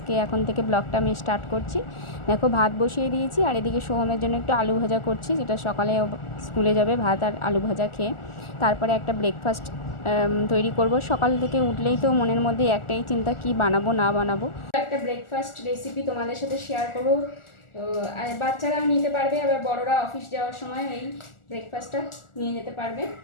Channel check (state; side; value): late; right; 1.4 ms